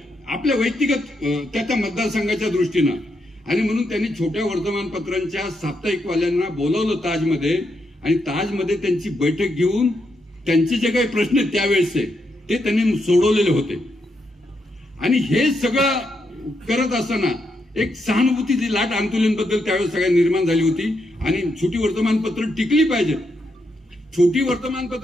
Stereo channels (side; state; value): both; normal; correlation 0.81